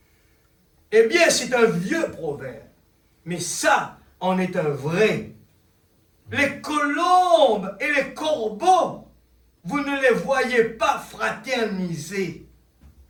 Eh bien, c'est un vieux proverbe. Mais ça, en est un vrai. Les colombes et les corbeaux, vous ne les voyez pas fraterniser.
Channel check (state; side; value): identical; both; correlation 1.00